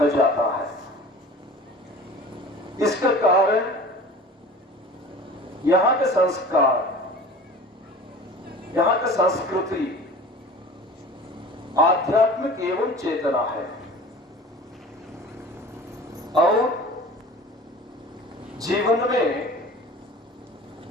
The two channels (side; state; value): both; normal; correlation 0.40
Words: जाता है। इसका कारण यहाँ के संस्कार, यहाँ की संस्कृति आध्यात्मिक एवं चेतना है और जीवन में